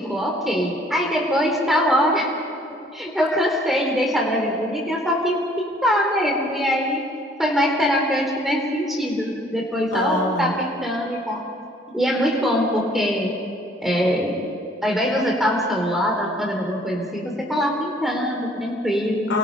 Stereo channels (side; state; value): both; normal; correlation 0.59